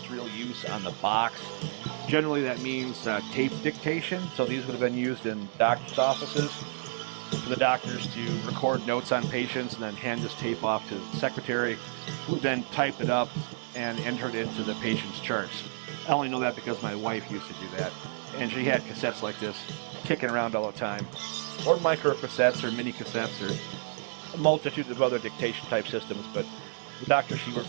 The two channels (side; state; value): left; silent; 58 dB below the other